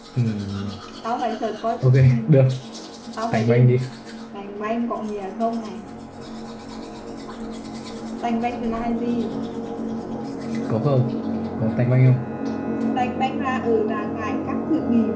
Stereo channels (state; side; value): identical; both; correlation 1.00